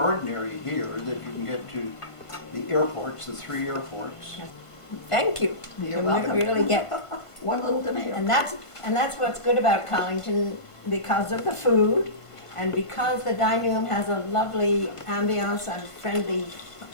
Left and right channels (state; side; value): late; right; 1.5 ms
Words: here that you can get to the airports, the 3 airports. Thank you. You're You welcome. really get, One little tomato. and that's what's good about Collington, because of the food, and because the dining room has a lovely ambiance and friendly